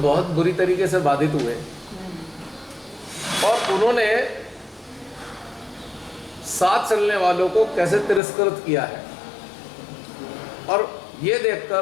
बुरी तरीके से बाधित हुए और उन्होंने साथ चलने वालों को कैसे तिरस्कृत किया है। और ये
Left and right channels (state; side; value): drops out; right; at 8.2 s